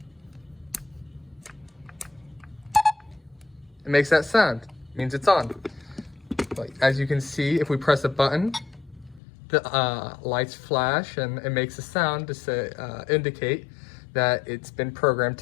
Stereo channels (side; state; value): right; drops out; at 9.2 s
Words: it makes that sound. It means it's on. Like, as you can see, if we press a button, the lights flash and it makes a sound to say, indicate that it's been programmed